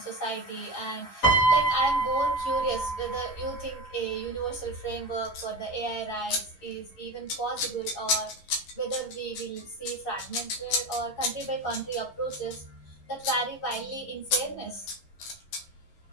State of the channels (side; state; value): right; late; 11 ms